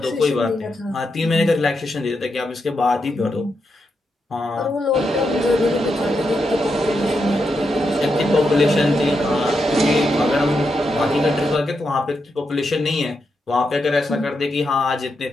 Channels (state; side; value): normal; both; correlation 0.84